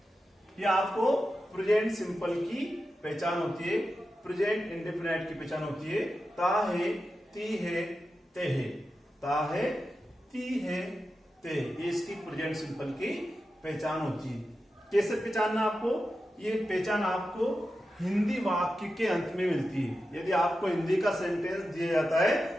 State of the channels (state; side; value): normal; both; correlation 0.91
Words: ये आपको प्रेजेंट सिंपल की पहचान होती है। प्रेजेंट इंडेफिनाइट की पहचान होती है ता है, ती है, ते है। ता है, ती है, ते, ये इसकी प्रेजेंट सिंपल की पहचान होती है। कैसे पहचानना आपको? ये पहचान आपको हिंदी वाक्य के अंत में मिलती है। यदि आपको हिंदी का सेंटेंस दिया जाता है